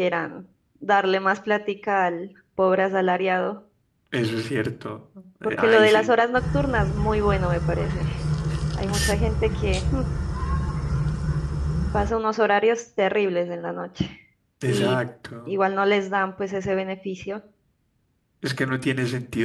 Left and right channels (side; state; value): both; identical; correlation 1.00